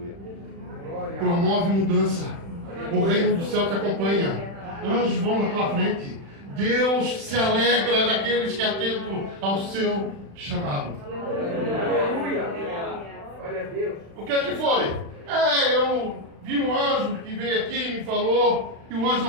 Promove mudança. O reino do céu te acompanha. Anjos vão na tua frente. Deus se alegra daqueles que atentam ao seu chamado. Aleluia. Glória a Deus. O que é que foi? Eu vi um anjo que veio aqui e me falou, e o anjo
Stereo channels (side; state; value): left; late; 36 ms